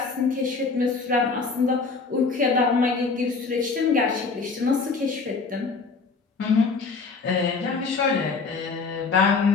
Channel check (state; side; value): quieter; right; 4.5 dB